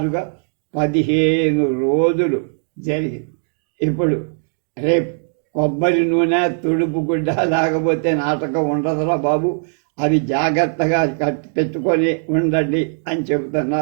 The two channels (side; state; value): left; silent; 66 dB below the other